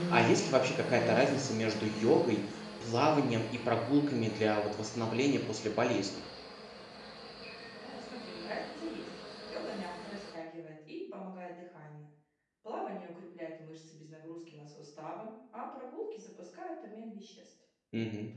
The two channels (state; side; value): identical; both; correlation 1.00